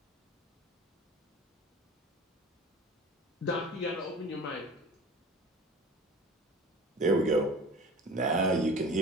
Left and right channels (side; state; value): both; normal; correlation 0.40